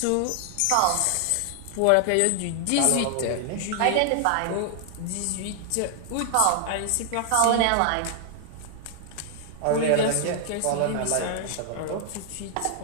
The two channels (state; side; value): different; both; correlation 0.00